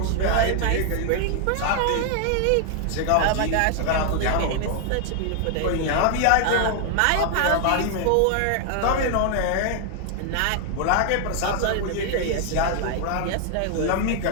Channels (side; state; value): both; different; correlation 0.00